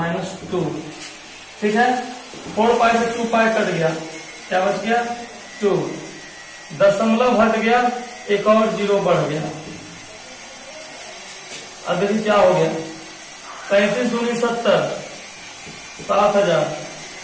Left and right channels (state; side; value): identical; both; correlation 1.00